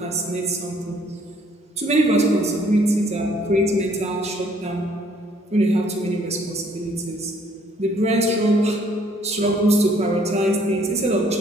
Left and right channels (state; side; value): normal; both; correlation 0.62